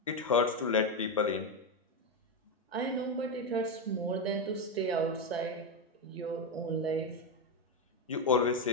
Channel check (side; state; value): both; normal; correlation 0.09